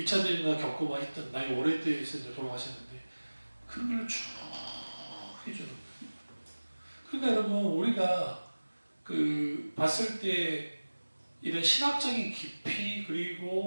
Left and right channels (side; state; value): both; inverted; correlation -1.00